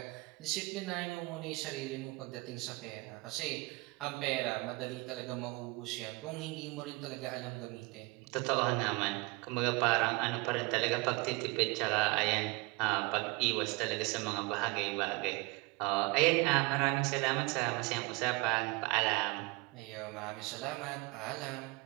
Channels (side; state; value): left; quieter; 25.8 dB